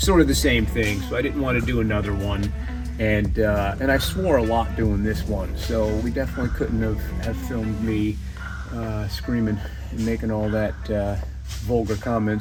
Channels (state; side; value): identical; both; correlation 1.00